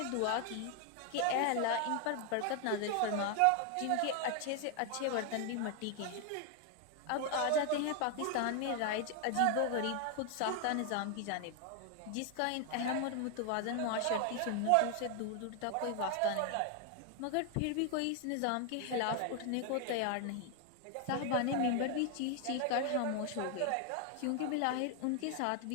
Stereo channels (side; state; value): both; different; correlation 0.00